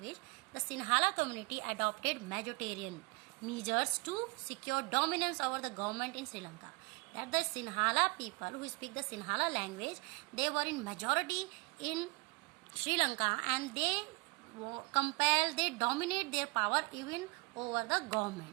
the Sinhala community adopted majoritarian measures to secure dominance over the government in Sri Lanka. That the Sinhala people who speak the Sinhala language, they were in majority in Sri Lanka, and they dominate their power even over the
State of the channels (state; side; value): quieter; left; 28.5 dB